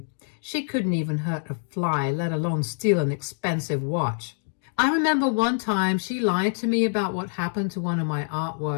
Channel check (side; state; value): right; silent; digital silence